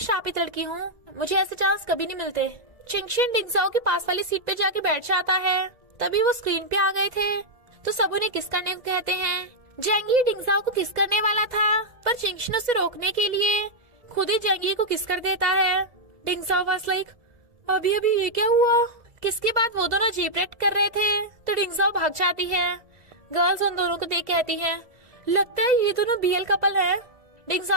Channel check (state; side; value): late; left; 1.7 ms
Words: लड़की हूँ, मुझे ऐसे चांस कभी नहीं मिलते। चिंगशिन डिंगजाओ के पास वाली सीट पे जाके बैठ जाता है। तभी वो स्क्रीन पे आ गए थे तो सब उन्हें किस करने को कहते हैं। जेंगी डिंगजाओ को किस करने वाला था, पर चिंगशिन उसे रोकने के लिए खुद ही जेंगी को किस कर देता है। डिंगजाओ वाज लाइक, अभी अभी ये क्या हुआ? किसके बाद वो दोनों जीप रेड कर रहे थे तो डिंगजाओ भाग जाती है। गर्ल्स उन दोनों को देख कहती है, लगता है ये दोनों बीएल कपल है।